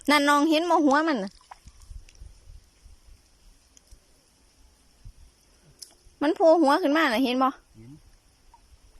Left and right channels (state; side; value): identical; both; correlation 1.00